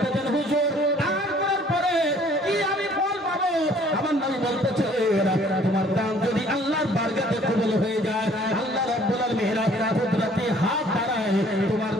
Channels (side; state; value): both; normal; correlation 0.57